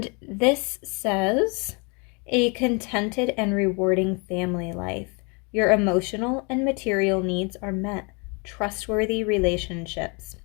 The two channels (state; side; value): quieter; right; 32.1 dB